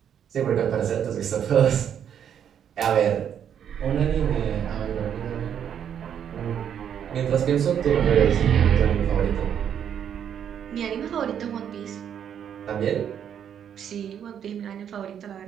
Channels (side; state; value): left; quieter; 8.8 dB